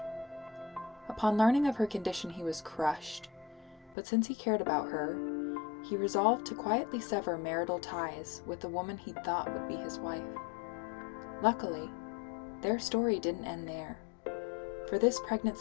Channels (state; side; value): drops out; right; at 4.0 s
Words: Upon learning of her condition, he was crushed, but since he cared about her, he resolved to quietly sever marital ties with the woman he thought would be his wife. Luckily, their story didn't end there, for this